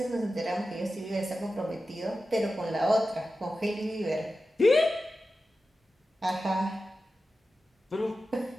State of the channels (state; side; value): normal; both; correlation 0.93